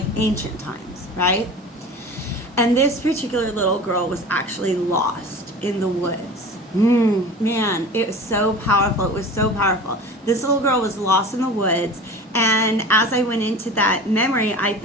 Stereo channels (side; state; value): both; normal; correlation 0.37